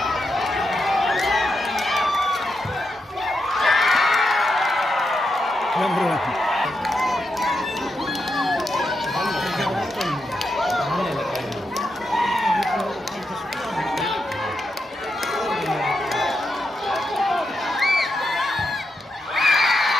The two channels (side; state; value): both; normal; correlation 0.85